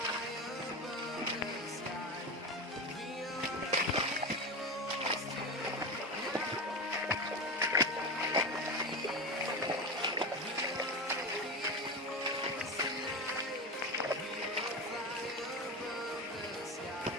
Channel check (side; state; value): both; normal; correlation 0.21